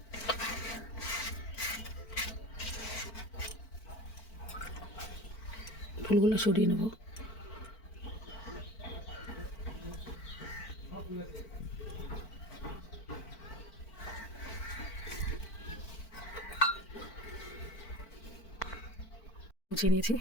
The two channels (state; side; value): late; right; 4.5 ms